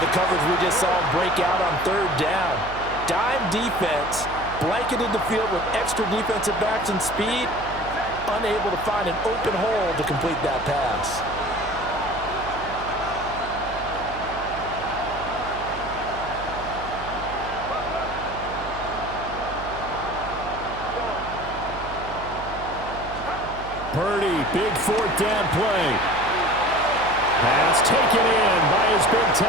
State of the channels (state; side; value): noise; right; hum, 13 dB below the sound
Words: the coverage we just saw him break out on 3rd down? Dime defense, blanketed the field with extra defensive backs and speed, unable to find an open hole to complete that pass. Purdy, big 4th down play. Pass taken in by his big